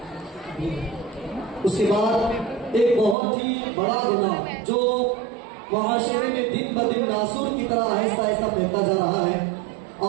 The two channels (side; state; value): left; drops out; at 3.2 s